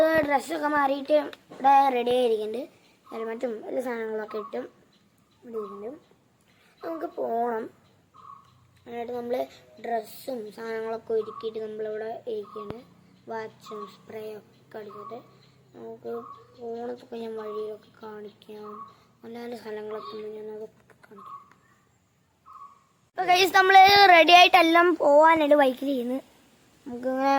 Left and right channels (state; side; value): identical; both; correlation 1.00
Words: ഡ്രസ്സൊക്കെ മാറിയിട്ട് ഇവിടെ റെഡി ആയിരിക്കുന്നുണ്ട്. ഹെൽമറ്റും എല്ലാ സാധനങ്ങളൊക്കെ ഇട്ടും ഇവിടെ ഇരിക്കുന്നുണ്ട്. നമുക്ക് പോകണം. എന്നിട്ട് നമ്മൾ ഡ്രസ്സും സാധനങ്ങളൊക്കെ ഒരുക്കിയിട്ട് നമ്മളിവിടെ ഇരിക്കുകയാണ്. വാച്ചും സ്പ്രേയും ഒക്കെ അടിച്ചിട്ട് നമുക്ക് പോകണത്തൊക്കെ ഞാൻ വഴിയിലൊക്കെ കാണിക്കാം. നല്ല നല്ല സ്ഥലങ്ങളൊക്കെ ഞാൻ അതൊക്കെ കാണിക്കാം. അപ്പോൾ ഗൈസ്, നമ്മൾ റെഡി ആയിട്ടെല്ലാം പോകാനായിട്ട് ബൈക്കിൽ ചെയ്യുന്നത്. നമുക്കിങ്ങനെ